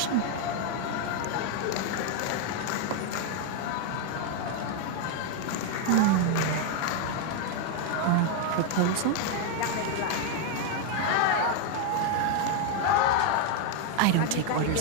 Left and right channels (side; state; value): both; different; correlation 0.01